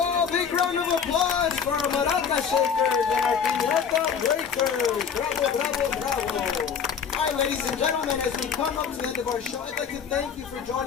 Big round of applause for our maraca shakers and our piñata breakers. Bravo, bravo, bravo. All right, ladies and gentlemen, as we come up to the end of our show, I'd like to thank you for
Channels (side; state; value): right; quieter; 6.8 dB